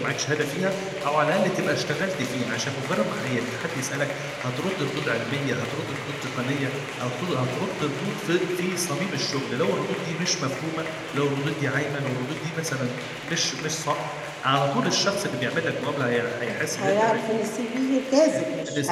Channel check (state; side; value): identical; both; correlation 1.00